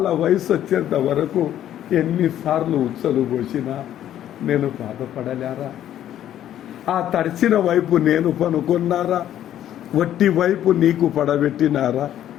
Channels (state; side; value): quieter; right; 11.5 dB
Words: వయసు వచ్చేంత వరకు ఎన్నిసార్లు ఉచ్చలు పోసినా నేను బాధపడలేరా? ఆ తడిచిన వైపు నేను పనుకున్నారా? వట్టి వైపు నీకు పడబెట్టినారా?